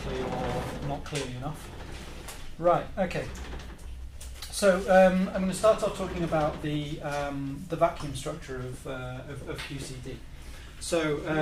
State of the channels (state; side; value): identical; both; correlation 1.00